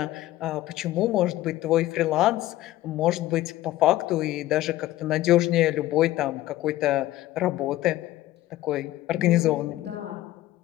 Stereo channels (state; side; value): quieter; right; 15.7 dB